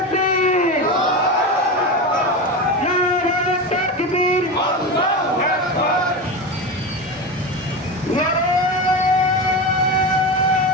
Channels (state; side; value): normal; both; correlation 0.21